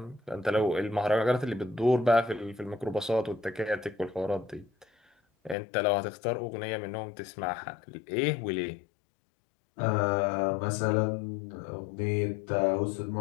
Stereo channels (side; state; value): right; drops out; at 5.6 s